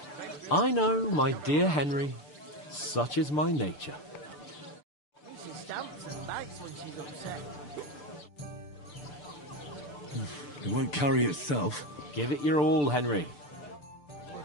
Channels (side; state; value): right; late; 6.8 ms